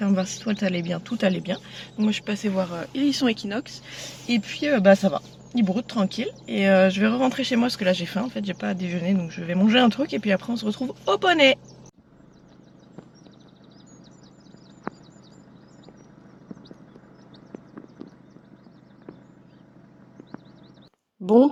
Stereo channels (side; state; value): both; identical; correlation 1.00